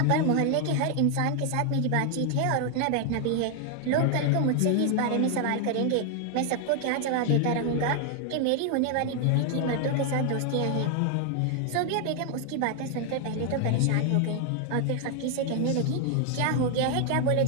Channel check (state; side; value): different; both; correlation 0.00